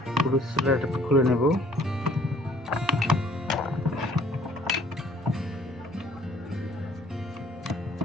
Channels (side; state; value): both; normal; correlation 0.58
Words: পুরো স্ল্যাবটা খুলে নেব।